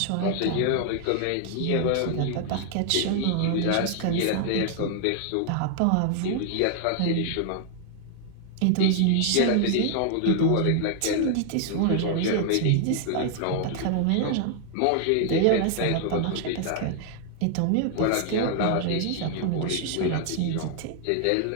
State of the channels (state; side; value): different; both; correlation 0.00